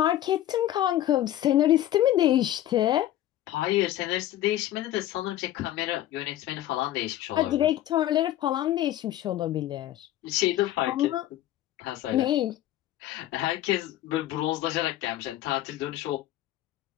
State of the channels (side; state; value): right; quieter; 13.4 dB